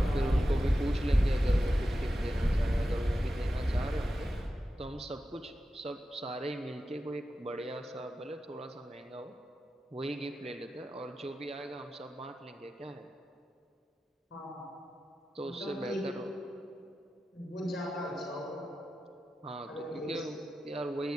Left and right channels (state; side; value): normal; both; correlation 0.92